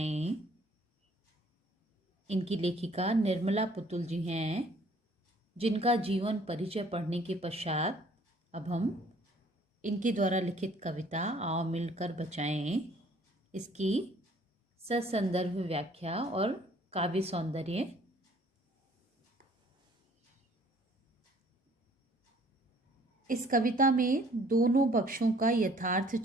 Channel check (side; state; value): both; normal; correlation 0.58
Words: इनकी लेखिका निर्मला पुतुल जी हैं, जिनका जीवन परिचय पढ़ने के पश्चात अब हम इनके द्वारा लिखित कविता आओ मिलकर बचाएं इसकी ससंदर्भ व्याख्या और काव्य सौंदर्य इस कविता में दोनों पक्षों का यथार्थ